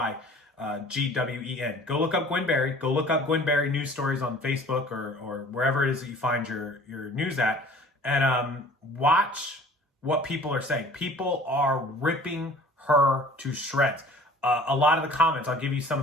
Gwen. Go look up Gwen Berry. Go look up Gwen Berry news stories on Facebook or wherever it is that you find your news at, and watch what people are saying. People are ripping her to shreds. A lot of the comments, I'll give you some of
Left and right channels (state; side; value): normal; both; correlation 0.48